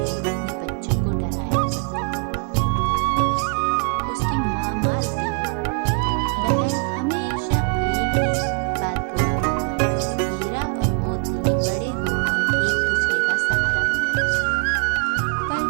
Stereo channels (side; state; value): left; quieter; 39.7 dB